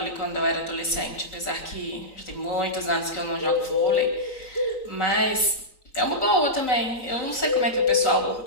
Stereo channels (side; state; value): right; late; 3.9 ms